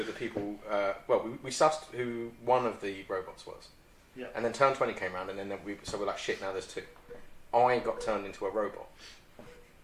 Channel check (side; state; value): both; identical; correlation 1.00